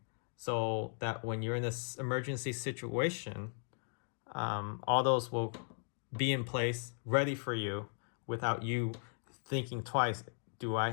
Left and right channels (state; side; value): silent; right; 53 dB below the other